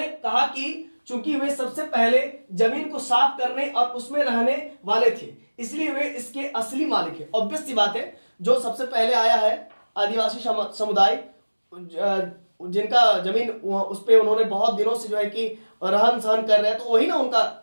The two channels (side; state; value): both; inverted; correlation -1.00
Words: कहा कि चूंकि वे सबसे पहले जमीन को साफ करने और उसमें रहने वाले थे, इसलिए वे इसके असली मालिक हैं। ऑब्वियस सी बात है, जो सबसे पहले आया है आदिवासी समुदाय, जिनका जमीन उस पे उन्होंने बहुत दिनों से जो है कि रहन सहन कर रहे हैं, तो वही ना